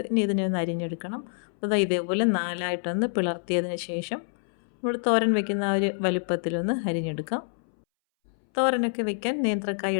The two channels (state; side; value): silent; right; 60 dB below the other